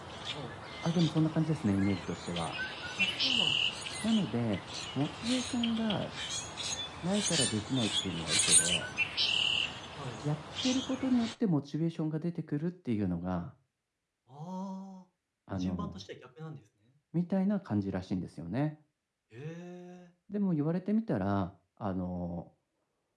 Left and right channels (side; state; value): both; identical; correlation 1.00